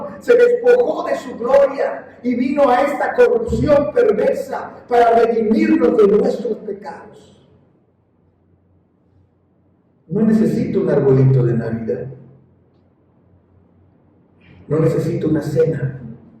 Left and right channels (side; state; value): both; identical; correlation 1.00